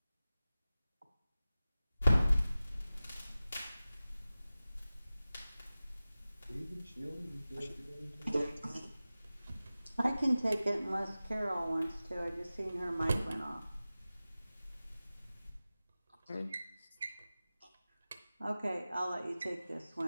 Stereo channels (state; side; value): inverted; both; correlation -0.96